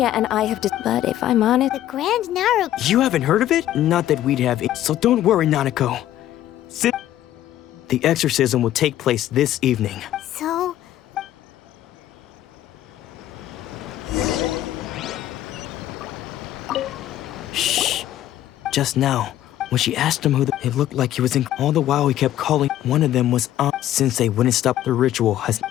and I have but if I'm honest... The Grand Naru... You haven't heard of it? Not that we'd have it. So don't worry, Nanako. The exorcism will take place this evening. So... Shh. Just now, when she asked him it looked like he was in... All the while he kept calling. One of them was Sensei wouldn't stop the ritual.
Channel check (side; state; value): right; quieter; 12.8 dB